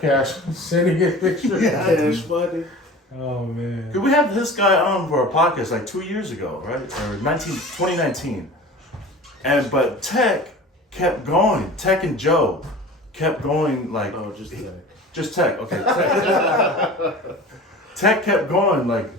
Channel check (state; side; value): normal; both; correlation 0.39